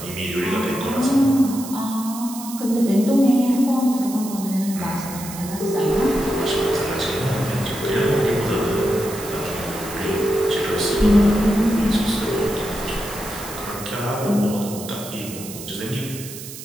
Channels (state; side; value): noise; right; hiss, 12 dB below the sound